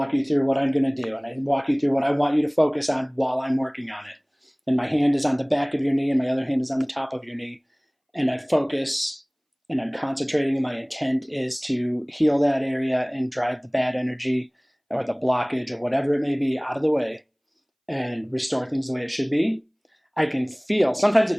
you through what I'm going to do, and I walk you through what I want you to focus on while I'm working on it. And my hand is on the back of your knee and my other hand is on the top of your knee. And I focus and I'm concentrating, and my intent is to heal that area and drive the bad energy or the blockage or whatever it may be out of the way and restore things the way it should be. I can feel, sometimes it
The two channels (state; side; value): identical; both; correlation 1.00